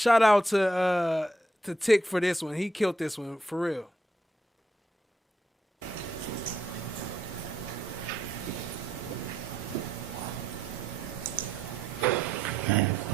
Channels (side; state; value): both; normal; correlation 0.77